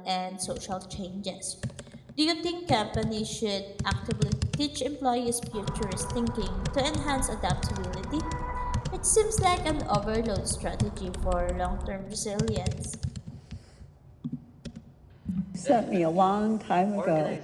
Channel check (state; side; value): identical; both; correlation 1.00